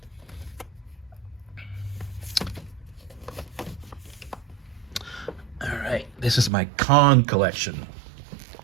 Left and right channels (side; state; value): left; drops out; at 6.5 s